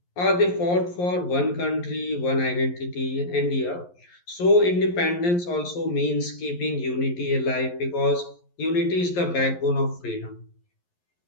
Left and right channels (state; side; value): late; right; 11 ms